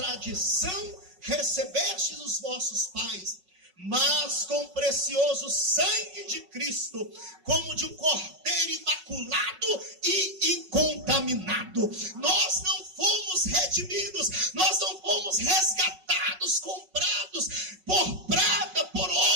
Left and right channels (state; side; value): late; left; 5.4 ms